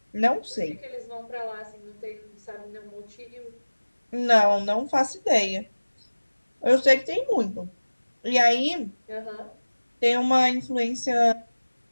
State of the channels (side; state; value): both; inverted; correlation -1.00